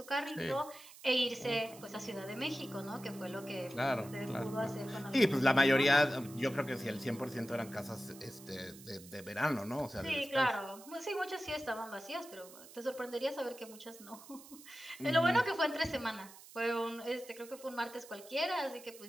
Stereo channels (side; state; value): right; noise; hiss, 18 dB below the sound